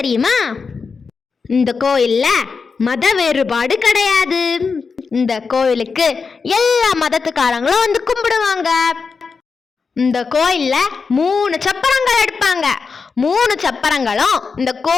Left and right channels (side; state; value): right; quieter; 5.1 dB